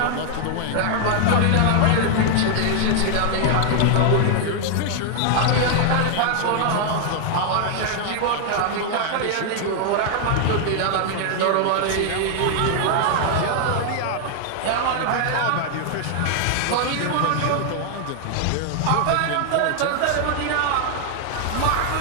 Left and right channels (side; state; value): both; different; correlation 0.00